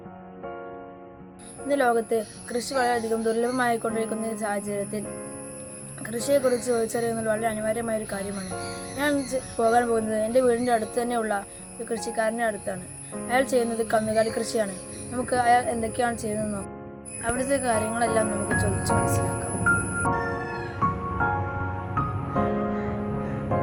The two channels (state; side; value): identical; both; correlation 1.00